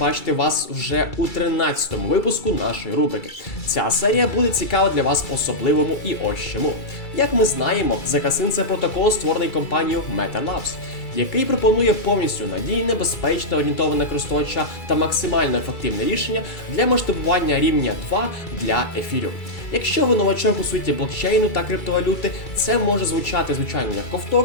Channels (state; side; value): late; right; 2.3 ms